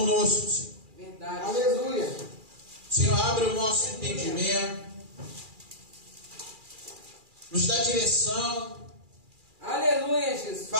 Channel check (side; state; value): left; late; 2.4 ms